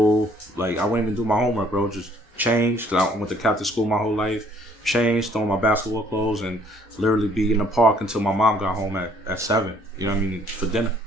Like I wouldn't even do my homework, bro. Just change. Cause I went to Catholic school my whole life. Change, throw on my basketball clothes, and literally be in the park until my mom got home at 7. You know what I mean? For dinner.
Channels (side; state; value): both; normal; correlation 0.61